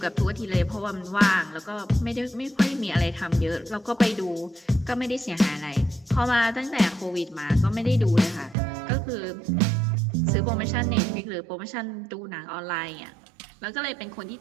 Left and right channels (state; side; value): drops out; left; at 8.6 s